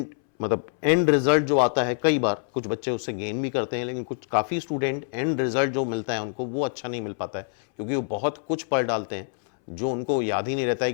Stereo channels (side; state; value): right; silent; 61 dB below the other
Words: रिजल्ट जो आता है, कई बार कुछ बच्चे उससे गेन भी करते हैं, लेकिन कुछ काफ़ी स्टूडेंट एंड रिजल्ट जो मिलता है उनको वो अच्छा नहीं मिल पाता है, क्योंकि वो बहुत कुछ पढ़ डालते हैं जो उनको याद ही नहीं रहता है